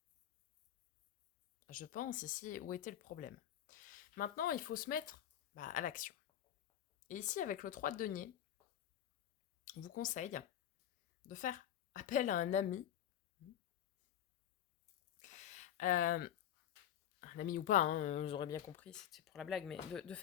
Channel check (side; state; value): right; quieter; 10.7 dB